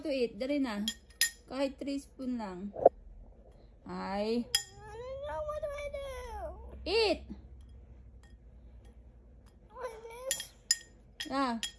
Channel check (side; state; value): both; identical; correlation 1.00